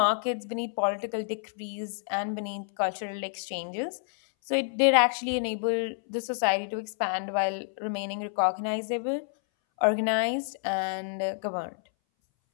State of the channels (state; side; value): silent; right; 59 dB below the other